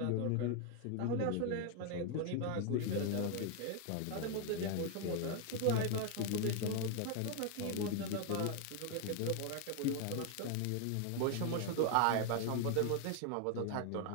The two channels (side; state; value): both; different; correlation 0.00